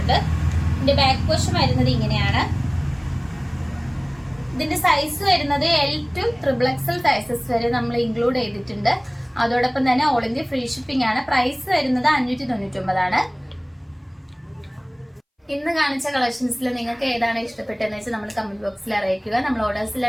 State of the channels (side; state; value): both; identical; correlation 1.00